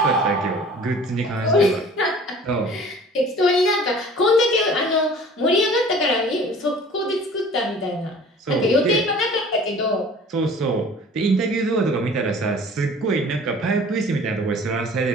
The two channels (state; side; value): normal; both; correlation 0.47